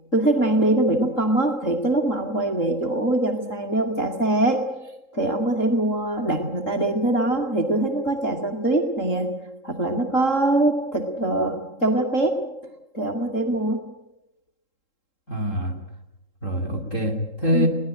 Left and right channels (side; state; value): right; late; 3.7 ms